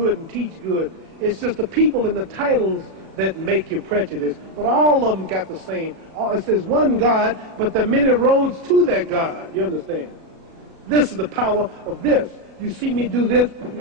and teach good. It's just the people and the titles that make you prejudice. But all of them got the same. It says one God, but there are many roads to that God. You understand? This is the power of this. You see me do this,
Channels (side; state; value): left; late; 37 ms